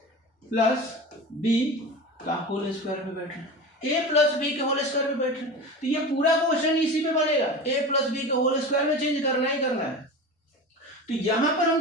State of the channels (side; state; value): both; normal; correlation 0.30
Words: प्लस बी का होल स्क्वायर पे बैठ रहा है, ए प्लस बी के होल स्क्वायर पे बैठ रहे हैं। तो ये पूरा क्वेश्चन इसी पे बनेगा, ए प्लस बी के होल स्क्वायर में चेंज करना ही करना है। तो यहां पर